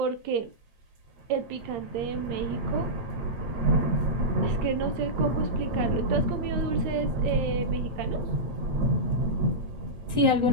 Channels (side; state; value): left; late; 8.7 ms